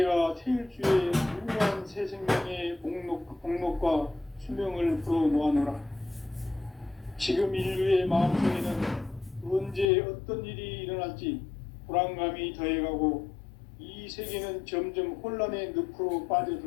태일주의 무궁한 새 생명의 복록과 수명을 불어놓아노라. 지금 인류의 마음속에는 언제 어떤 일이 일어날지 불안감이 더해가고 이 세계는 점점 혼란의 늪으로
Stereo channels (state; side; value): drops out; right; at 9.9 s